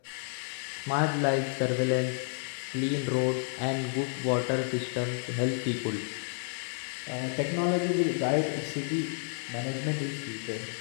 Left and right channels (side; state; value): right; silent; digital silence